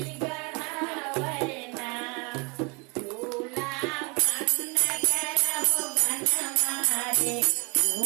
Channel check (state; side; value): quieter; left; 30.1 dB